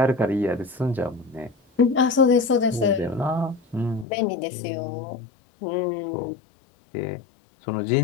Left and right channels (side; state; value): right; drops out; at 4.0 s